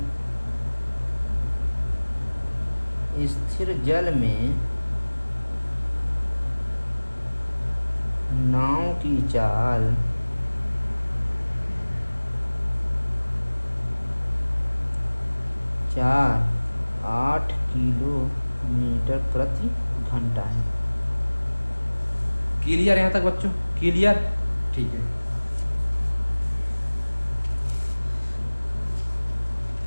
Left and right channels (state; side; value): inverted; both; correlation -1.00